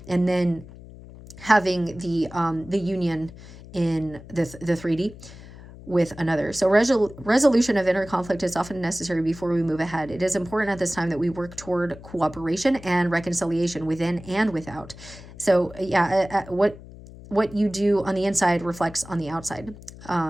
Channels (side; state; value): left; noise; hum, 17 dB below the sound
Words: and then having the union in the 3D with another. So resolution of inner conflict is often necessary before we move ahead. It is important at this time that we work toward cooperation and reconciliation within and without. So yeah, what you do on the inside reflects on the outside.